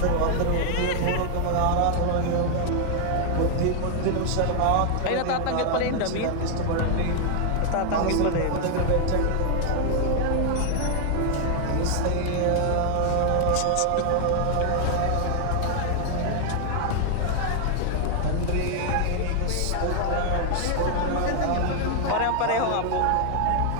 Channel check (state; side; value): different; both; correlation 0.00